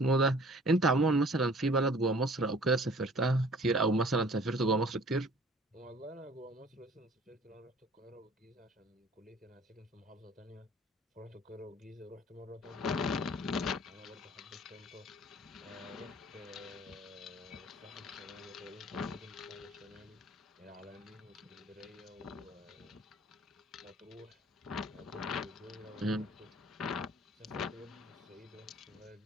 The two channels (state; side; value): normal; both; correlation 0.52